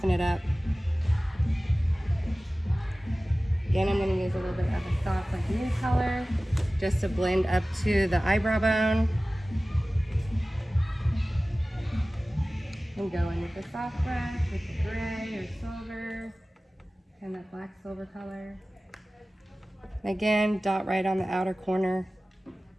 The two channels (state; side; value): normal; both; correlation 0.97